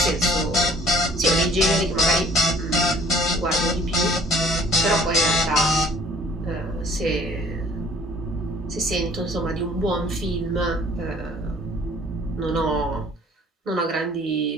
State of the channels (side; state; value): both; normal; correlation 0.55